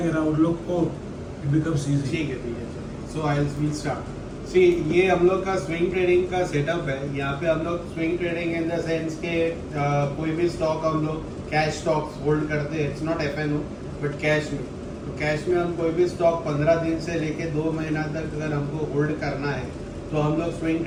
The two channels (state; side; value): identical; both; correlation 1.00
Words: ना उन लोग को इट बिकम्स इजी। ठीक है। सो आई विल स्टार्ट। सी ये हम लोग का स्विंग ट्रेडिंग का सेटअप है। यहाँ पे हम लोग swing trading in the sense के कोई भी स्टॉक हम लोग कैश स्टॉक्स होल्ड करते हैं। It's not FNO but cash में। तो कैश में हम कोई भी स्टॉक 15 दिन से लेके 2 महीना तक अगर हमको होल्ड करना है तो हम लोग स्विंग